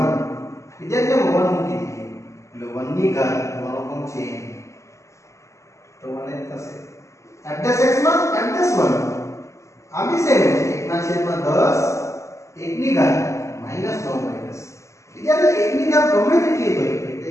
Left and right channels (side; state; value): right; late; 0.14 ms